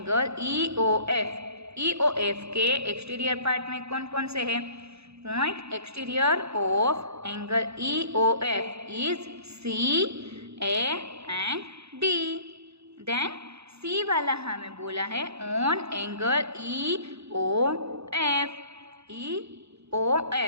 E O F, E O F के एक्सटीरियर पार्ट में कौन कौन से है, point exterior of angle E O F is C, A and D. Then C वाला हमें बोला है on angle E O F, E O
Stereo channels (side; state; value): left; late; 0.79 ms